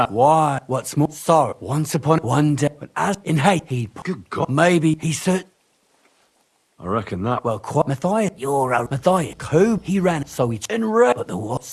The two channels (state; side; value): identical; both; correlation 1.00